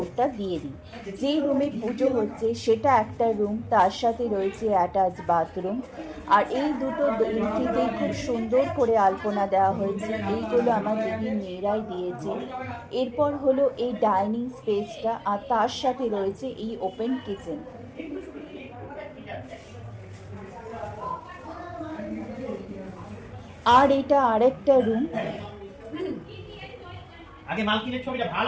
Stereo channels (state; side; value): identical; both; correlation 1.00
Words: দিয়ে দিই। যেই রুমে পুজো হচ্ছে সেটা একটা রুম, তার সাথে রয়েছে অ্যাটাচ বাথরুম। আর এই দুটো এন্ট্রিতেই খুব সুন্দর করে আলপনা দেওয়া হয়েছে, এইগুলো আমার দিদির মেয়েরাই দিয়েছে। এরপর হলো এই ডাইনিং স্পেসটা, আর তার সাথে রয়েছে এই ওপেন কিচেন। আর এটা আরেকটা রুম। আগে মালকিনের ছবিটা